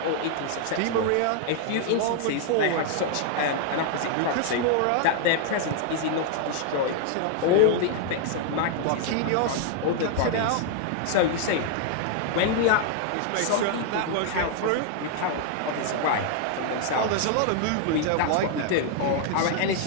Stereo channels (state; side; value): different; both; correlation 0.00